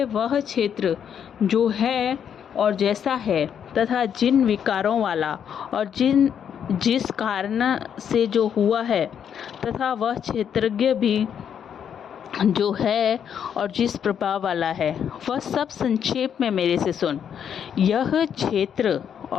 वह क्षेत्र जो है और जैसा है तथा जिन विकारों वाला और जिस कारण से जो हुआ है, तथा वह क्षेत्रज्ञ भी जो है और जिस प्रभाव वाला है, वह सब संक्षेप में मेरे से सुन। यह क्षेत्र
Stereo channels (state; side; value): quieter; right; 8.4 dB